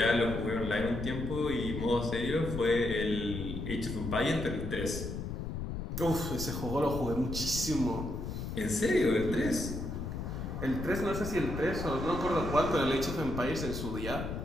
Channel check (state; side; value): noise; left; rumble, 5 dB below the sound